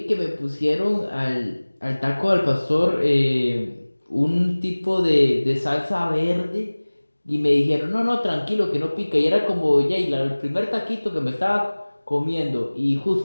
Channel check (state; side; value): inverted; both; correlation -1.00